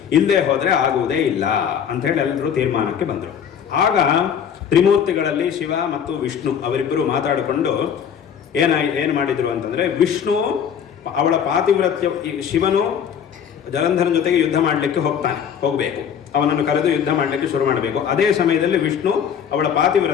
ಇಲ್ಲದೆ ಹೋದರೆ ಆಗುವುದೇ ಇಲ್ಲ ಅಂಥೇಳಿ ಎಲ್ಲರೂ ತೀರ್ಮಾನಕ್ಕೆ ಬಂದರು. ಆಗ ತ್ರಿಮೂರ್ತಿಗಳಲ್ಲಿ ಶಿವ ಮತ್ತು ವಿಷ್ಣು ಅವರಿಬ್ಬರು ಮಾತಾಡಿಕೊಂಡು ಏನು ಮಾಡಿದ್ರು ಅಂತಂದರೆ, ವಿಷ್ಣು ಅವಳ ಪಾತಿವ್ರತ್ಯ, ಶಿವನು ಜಲಂಧರನ ಜೊತೆಗೆ ಯುದ್ಧ ಮಾಡಲಿಕ್ಕೆ ಹೋಗಬೇಕು, ಅವನನ್ನು ಕರೆದು ಯುದ್ಧ ಮಾಡಲಿಕ್ಕೆ ಶುರು ಮಾಡಬೇಕು. ಅದೇ ಸಮಯದಲ್ಲಿ ವಿಷ್ಣು ಅವಳ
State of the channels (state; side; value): quieter; right; 8.1 dB